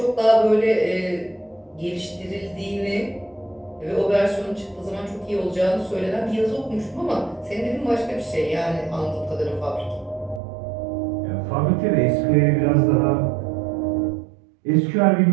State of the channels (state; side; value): drops out; left; at 10.4 s